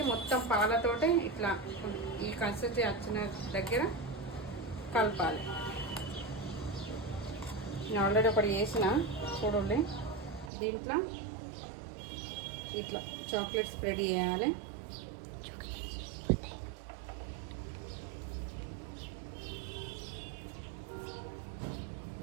మొత్తం పాలతోటి ఇట్లా ఈ కన్సిస్టెన్సీ వచ్చిన దగ్గర కలపాలి. నేను ఆల్రెడీ ఒకటి వేసిన చూడండి. దీంట్లో ఇట్లా చాక్లెట్ స్ప్రెడ్ చేయాలి.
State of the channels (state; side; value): drops out; left; at 10.5 s